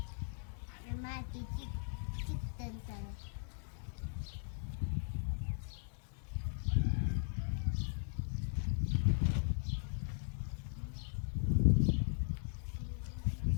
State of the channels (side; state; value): right; silent; digital silence